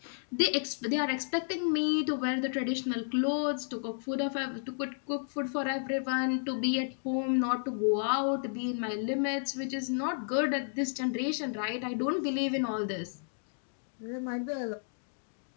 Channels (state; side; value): silent; right; digital silence